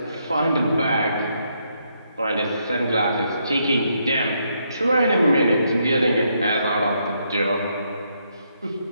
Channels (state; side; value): inverted; both; correlation -0.76